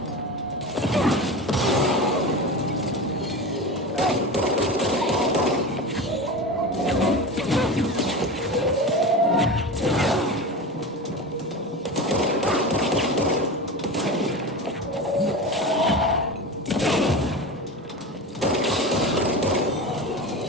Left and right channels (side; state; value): both; normal; correlation 0.27